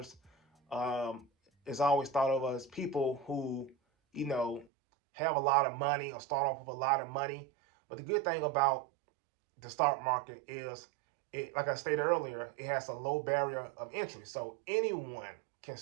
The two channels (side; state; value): left; drops out; at 4.7 s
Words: It's always thought of as people who you know have a lot of money or start off with a lot of money. But the good thing about the stock market is, it, like I stated earlier, it has a low barrier of entry, so anyone can